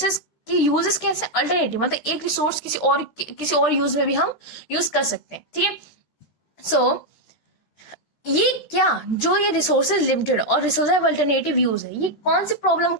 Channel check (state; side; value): late; right; 13 ms